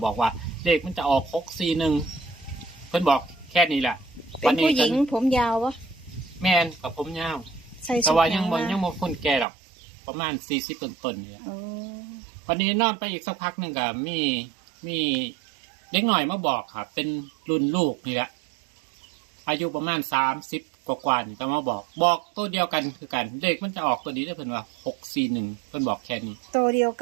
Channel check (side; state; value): left; drops out; at 9.5 s